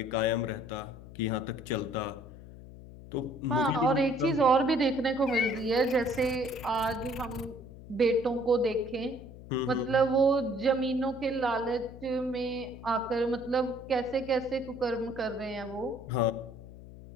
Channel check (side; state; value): left; noise; hum, 16 dB below the sound